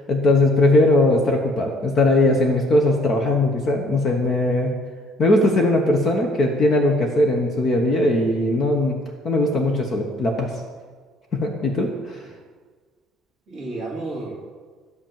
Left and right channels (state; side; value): normal; both; correlation 0.61